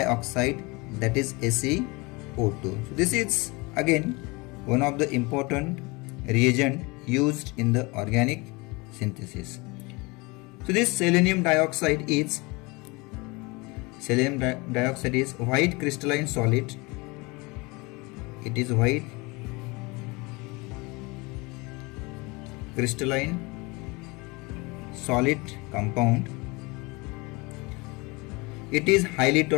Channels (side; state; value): right; quieter; 25.8 dB